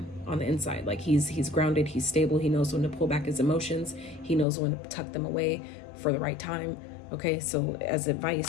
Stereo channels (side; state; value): right; drops out; at 4.5 s